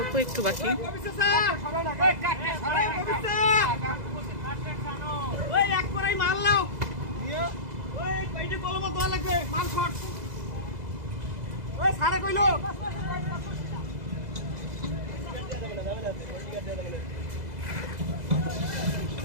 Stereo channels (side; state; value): left; late; 2.0 ms